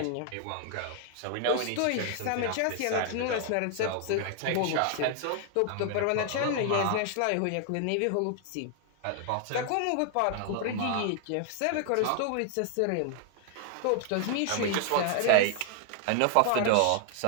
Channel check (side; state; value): both; different; correlation 0.00